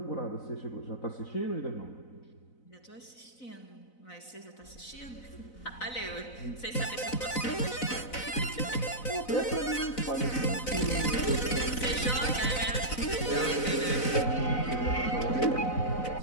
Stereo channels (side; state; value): right; late; 4.0 ms